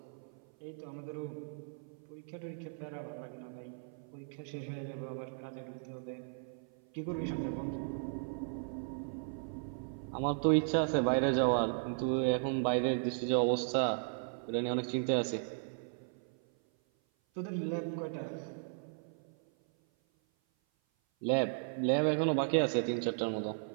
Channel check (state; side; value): silent; left; 54 dB below the other